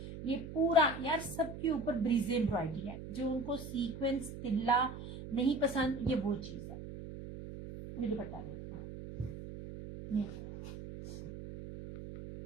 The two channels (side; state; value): right; noise; hum, 10 dB below the sound